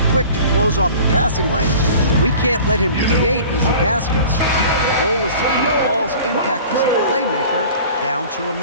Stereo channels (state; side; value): inverted; both; correlation -0.43